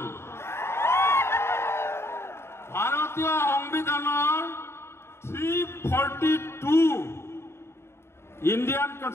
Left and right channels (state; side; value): late; right; 0.12 ms